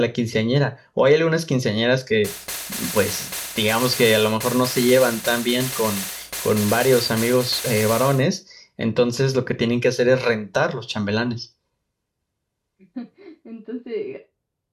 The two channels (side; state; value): both; identical; correlation 1.00